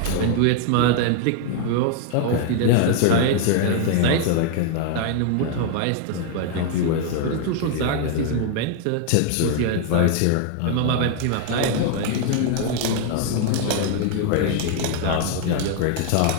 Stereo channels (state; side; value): different; both; correlation 0.00